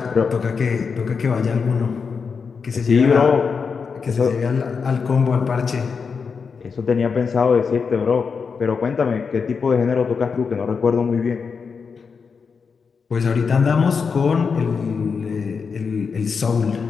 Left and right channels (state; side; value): quieter; right; 5.6 dB